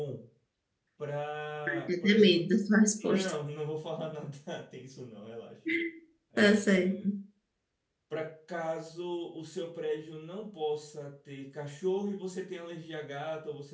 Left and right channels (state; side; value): identical; both; correlation 1.00